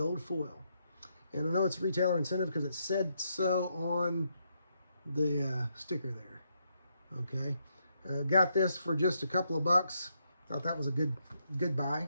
foil. And I know it's retailer incentive because it said so on the sticker there. Okay. Got this for just a couple of bucks. Thought that was a good buy.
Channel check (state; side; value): inverted; both; correlation -0.78